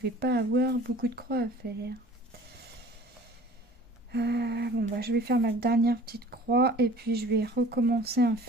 pas avoir beaucoup de croix à faire. Bon bah je vais faire ma dernière petite croix et puis je vais recommencer un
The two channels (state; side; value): normal; both; correlation 0.47